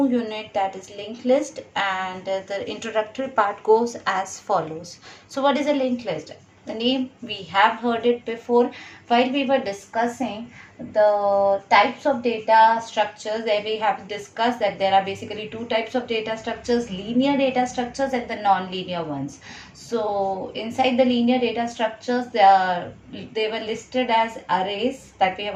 unit, that is linked list, and the introductory part goes as follows. So what is a linked list? The name, we have heard it before while we were discussing the types of data structures. There we have discussed that there are basically two types of data structures, linear data structures and the non-linear ones. So inside the linear data structures, they were listed as arrays that we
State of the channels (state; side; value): identical; both; correlation 1.00